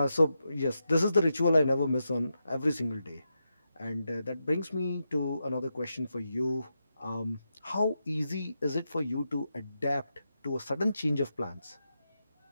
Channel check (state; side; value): inverted; both; correlation -0.87